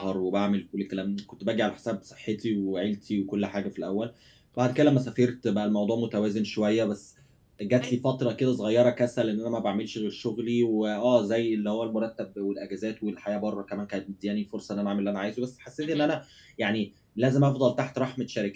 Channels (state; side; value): identical; both; correlation 1.00